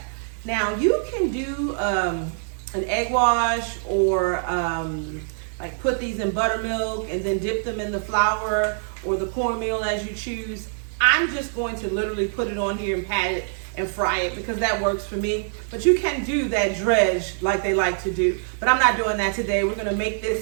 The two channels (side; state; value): left; silent; digital silence